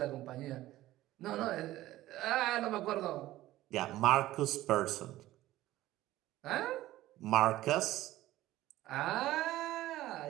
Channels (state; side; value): quieter; left; 15.7 dB